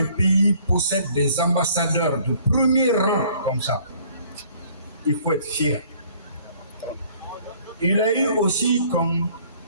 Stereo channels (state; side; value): inverted; both; correlation -0.58